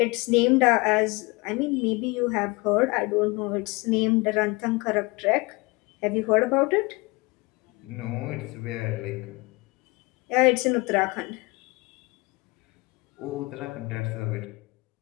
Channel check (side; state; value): right; quieter; 25.5 dB